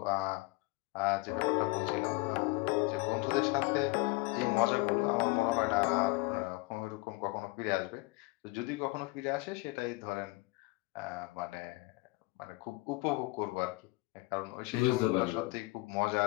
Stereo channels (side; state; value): right; quieter; 23.4 dB